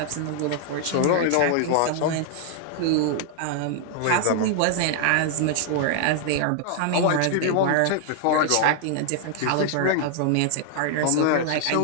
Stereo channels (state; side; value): different; both; correlation 0.00